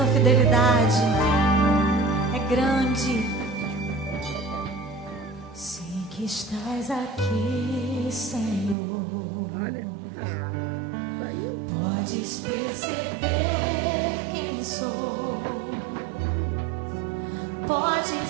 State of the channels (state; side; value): drops out; left; at 8.8 s